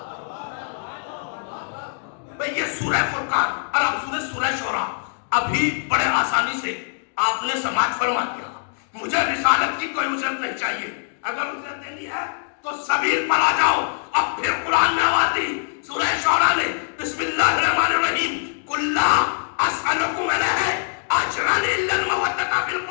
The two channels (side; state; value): right; silent; digital silence